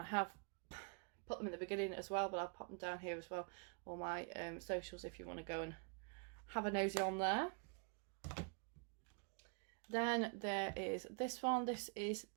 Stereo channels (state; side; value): quieter; left; 37.7 dB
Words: have put them in the beginning as well, but I'll pop them down here as well, all my socials, if you want to go and have a nosy on there. Then there is this one. This is